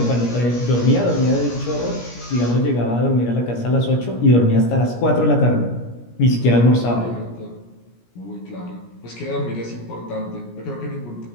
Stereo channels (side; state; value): right; late; 17 ms